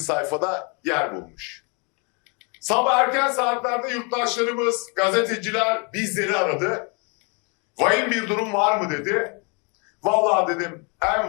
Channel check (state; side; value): quieter; right; 33.8 dB